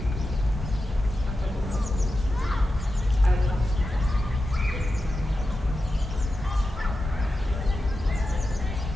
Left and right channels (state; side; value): normal; both; correlation 0.91